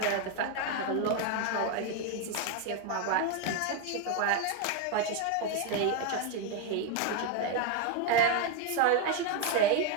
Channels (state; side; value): different; both; correlation 0.01